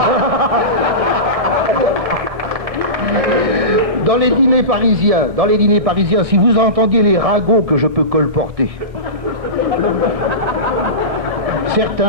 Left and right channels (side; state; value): left; late; 1.7 ms